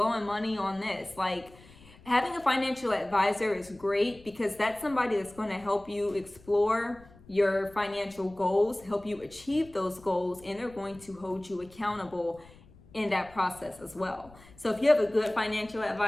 money on this? Like, having a financial advisor is great, because that's somebody that's going to help you explore your financial goals, help you achieve those goals, and they're going to hold you accountable in that process as well. So if you have a good financial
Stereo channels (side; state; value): left; noise; rumble, 23 dB below the sound